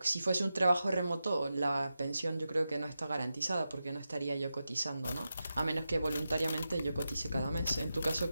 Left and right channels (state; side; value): inverted; both; correlation -0.91